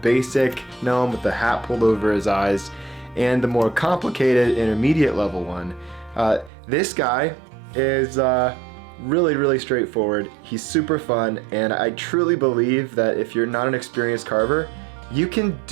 basic gnome with the hat pulled over his eyes and the more complicated intermediate level one. This guy is really straightforward. He's super fun, and I truly believe that if you're not an experienced carver, you can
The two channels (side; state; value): left; drops out; at 6.5 s